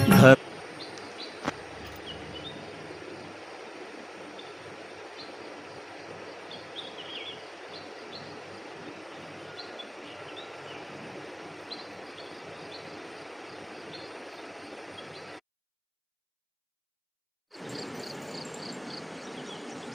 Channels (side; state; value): both; identical; correlation 1.00